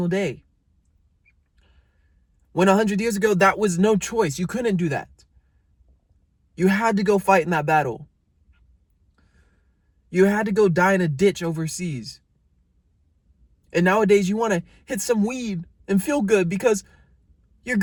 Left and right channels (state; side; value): identical; both; correlation 1.00